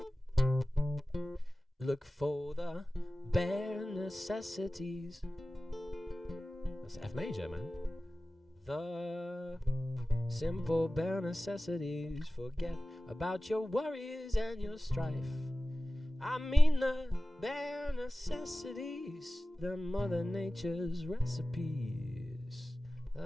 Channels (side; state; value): both; normal; correlation 0.96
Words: look for the bare necessities, that's F major, man. The simple bare necessities, forget about your worries and your strife. I mean the bare necessities, the Mother Nature's recipes